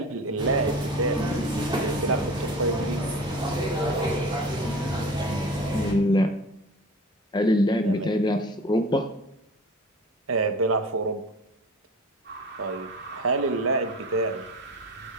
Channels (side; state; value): both; normal; correlation 0.38